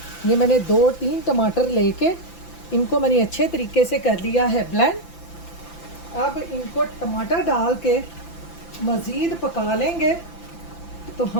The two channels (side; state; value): right; late; 5.9 ms